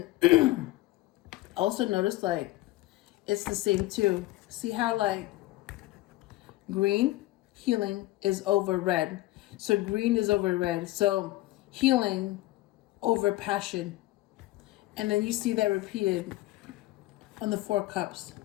Also notice like it's the same too. See how like green, healing, is over red. So green is over red. So healing over passion. And then you see that repeated on the 4 cups.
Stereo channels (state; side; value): quieter; right; 18.0 dB